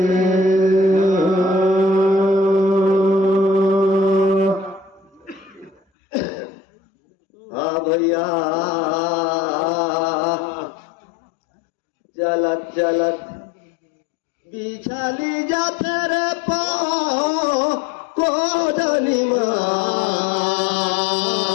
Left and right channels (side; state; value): right; drops out; at 5.8 s